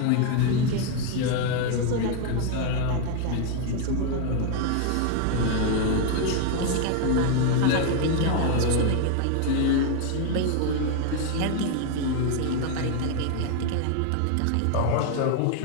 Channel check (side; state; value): both; different; correlation 0.01